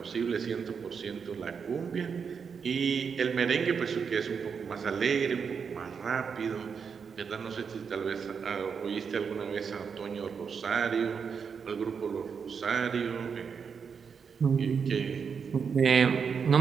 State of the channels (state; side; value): quieter; left; 6.3 dB